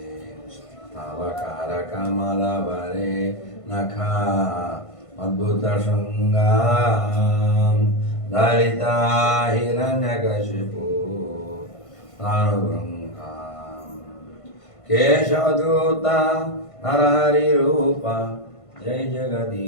అవకార కమల వరే నఖా అద్భుత శృంగాం దళిత హిరణ్యకశిపు ప్రాణుభృంగాం కేశవదూత నరహరి రూప జయ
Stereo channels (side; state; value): right; late; 1.5 ms